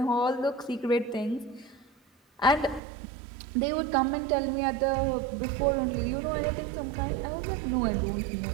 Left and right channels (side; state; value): left; drops out; at 2.8 s